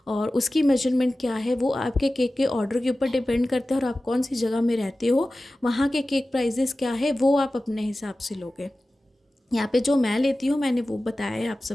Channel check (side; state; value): both; normal; correlation 0.96